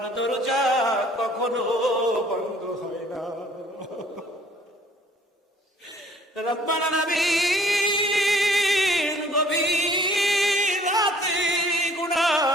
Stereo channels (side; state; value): both; normal; correlation 0.57